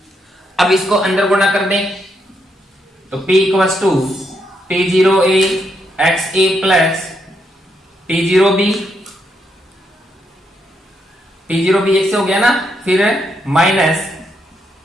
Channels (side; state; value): both; normal; correlation 0.78